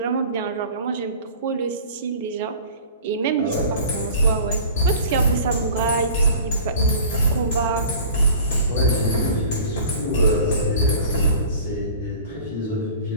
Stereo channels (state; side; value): inverted; both; correlation -0.42